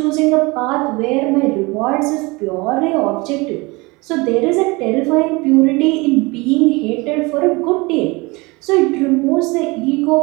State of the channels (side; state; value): left; quieter; 24.9 dB